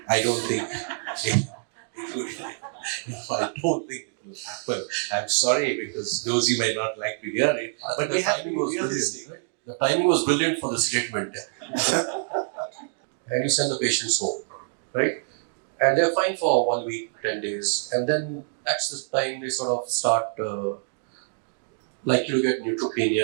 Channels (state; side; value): silent; left; digital silence